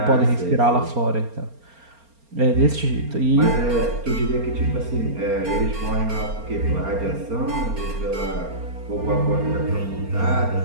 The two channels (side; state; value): left; late; 4.3 ms